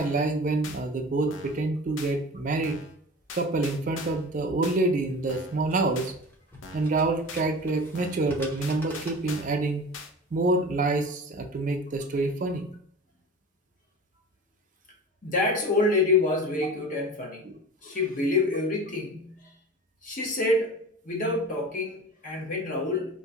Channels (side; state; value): both; normal; correlation 0.36